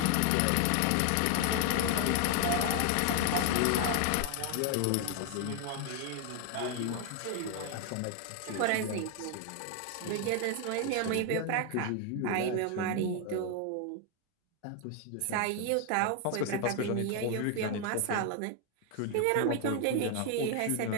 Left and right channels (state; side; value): different; both; correlation 0.00